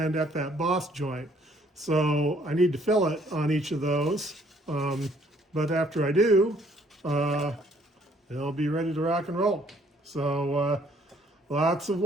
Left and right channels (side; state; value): both; normal; correlation 0.63